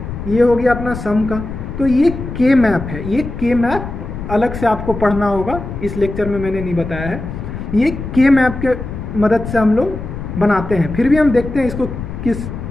ये हो गया अपना सम का। तो ये के मैप है, ये के मैप अलग से आपको पढ़ना होगा, इस लेक्चर में मैंने नहीं बताया है। ये के मैप के मदद से हम लोग बनाते हैं। फिर भी हम देखते हैं इसको किस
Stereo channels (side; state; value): left; noise; rumble, 8 dB below the sound